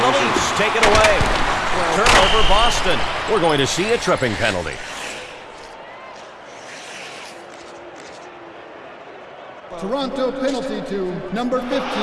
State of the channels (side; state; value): both; identical; correlation 1.00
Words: the Leafs take it away. Turnover Boston. We're going to see a tripping penalty. Toronto penalty to number 15. 2